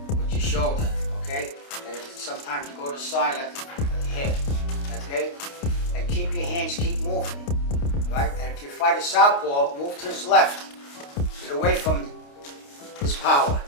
with your shoulder, okay? And sometimes you go to the side like the hip, okay? And keep your hands, keep moving, right? And if you fight a southpaw, move to his left. Get away from his power.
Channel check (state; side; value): late; right; 29 ms